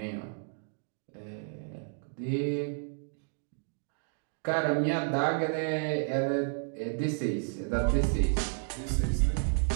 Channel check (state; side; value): silent; left; 57 dB below the other